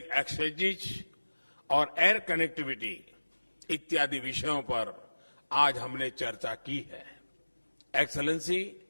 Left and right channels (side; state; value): both; inverted; correlation -1.00